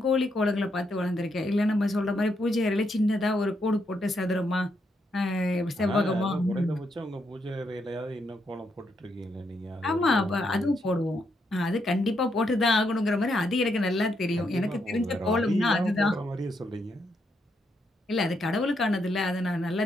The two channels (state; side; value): normal; both; correlation 0.79